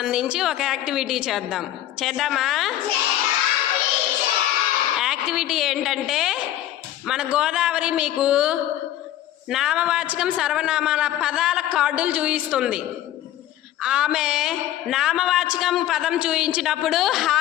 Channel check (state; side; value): quieter; right; 12.9 dB